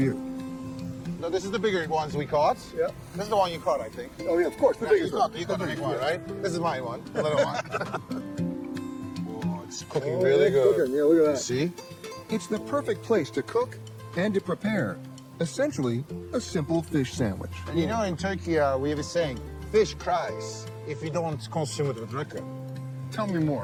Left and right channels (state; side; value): identical; both; correlation 1.00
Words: No, this is the bigger ones we caught. Yeah. This is the one you caught, I think. Oh, yeah, of course, the biggest one. You got the big one, right? This is my one, the little one. Oh, it's cooking Oh, really it's good. cooking. Yeah, look at that. See? It's the perfect place to cook and to prepare, essentially, a simple fish sandwich. And you know, in Turkey, we have a saying, fish cries if you don't consume it with rakı. Tell me